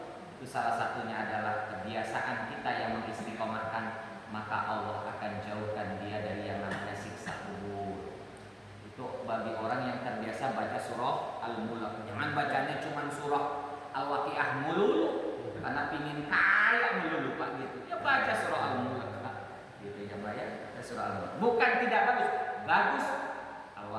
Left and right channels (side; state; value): both; identical; correlation 1.00